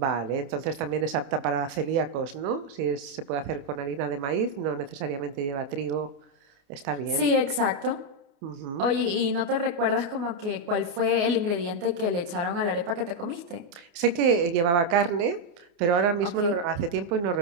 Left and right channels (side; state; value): left; late; 28 ms